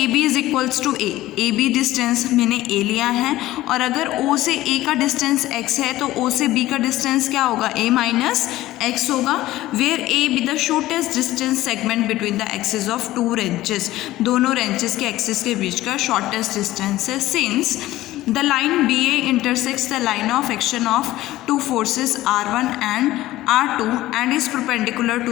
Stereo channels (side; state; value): right; quieter; 16.1 dB